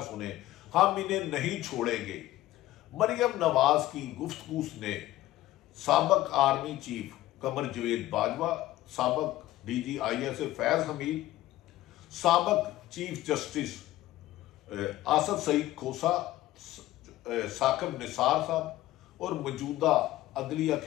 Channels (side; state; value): right; quieter; 15.6 dB